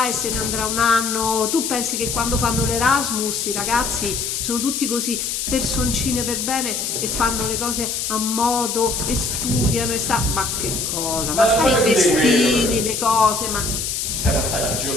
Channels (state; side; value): noise; left; hiss, 2 dB below the sound